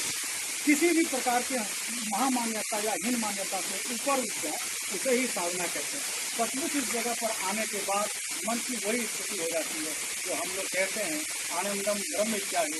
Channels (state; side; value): identical; both; correlation 1.00